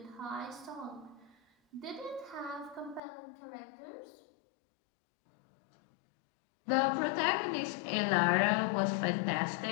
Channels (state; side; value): drops out; right; at 3.0 s